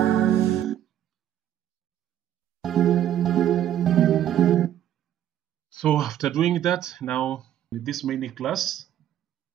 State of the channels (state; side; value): quieter; left; 11.2 dB